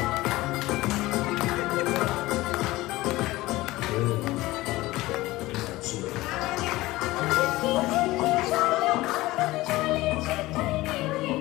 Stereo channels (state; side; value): quieter; right; 18.8 dB